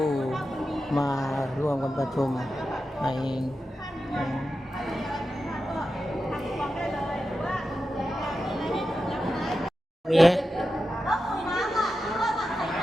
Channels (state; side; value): normal; both; correlation 0.91